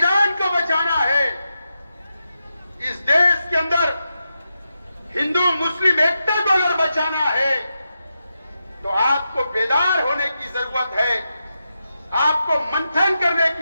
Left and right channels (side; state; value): both; inverted; correlation -0.88